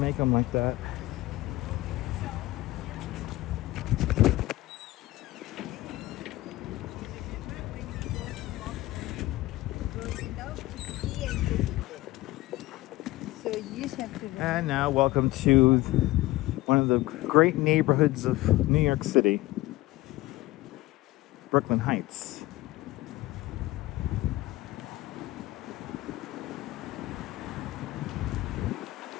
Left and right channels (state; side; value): quieter; right; 18.2 dB